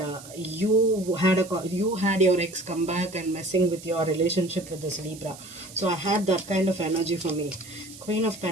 you had your ex come back and messing with your relationship with this Libra. So I had that kind of energy for me. Queen of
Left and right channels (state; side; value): noise; right; hiss, 17 dB below the sound